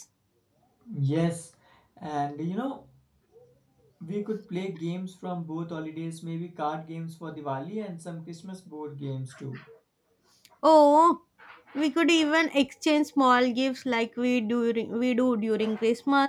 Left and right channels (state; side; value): identical; both; correlation 1.00